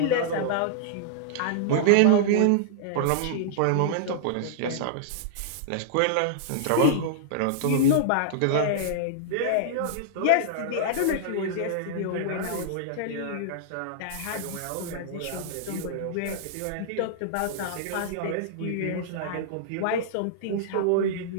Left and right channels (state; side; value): different; both; correlation -0.02